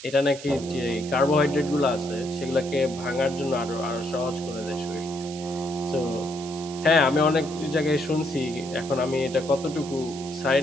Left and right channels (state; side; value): noise; right; hiss, 14 dB below the sound